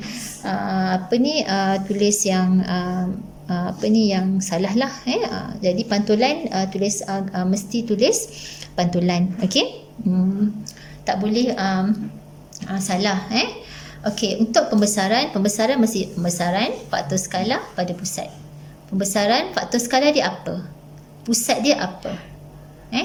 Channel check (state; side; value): identical; both; correlation 1.00